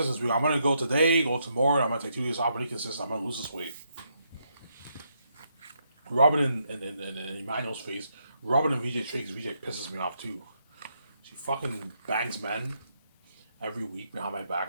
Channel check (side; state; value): both; inverted; correlation -0.77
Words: this week. I'm gonna go today, go tomorrow, and I'm gonna take 2 days off. I'm gonna be consistent. I'm gonna lose this weight. Robin and Emmanuel's face. Robin and VJ Tricks. VJ pisses me off too. She fucking bangs men every week behind my back.